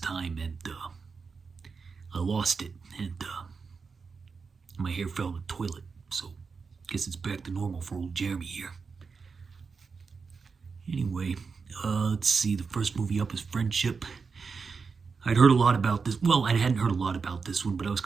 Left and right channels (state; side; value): quieter; left; 5.1 dB